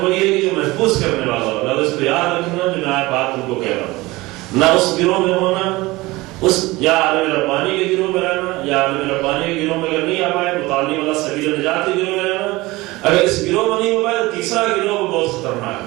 وہی ہے کہ جو محفوظ کرنے والا ہو، اس کو یاد رکھنا جو میں بات تم کو کہہ رہا ہوں. نہ اس گروہ میں ہونا، اس یا عالم ربانی کے گروہ میں رہنا، یا عالم ربانی کے گروہ میں اگر نہیں آ پائے متعلم والا سبیل نجات کے گروہ میں رہنا. اگر اس گروہ میں نہیں ہو پائے تو تیسرا گروہ بہت خطرناک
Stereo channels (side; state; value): left; quieter; 20.7 dB